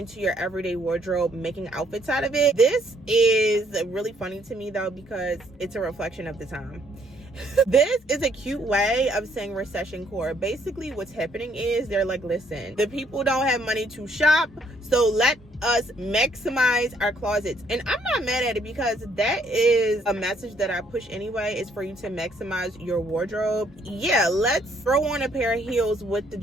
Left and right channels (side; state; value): both; normal; correlation 0.67